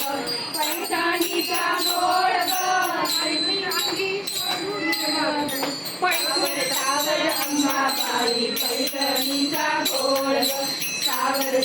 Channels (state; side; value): identical; both; correlation 1.00